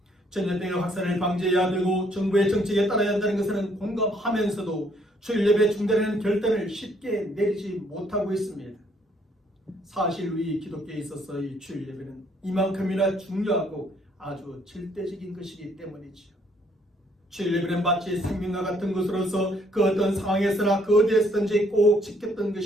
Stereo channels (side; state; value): both; normal; correlation 0.66